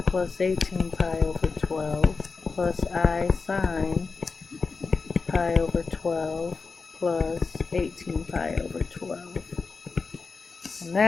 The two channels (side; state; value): right; quieter; 4.5 dB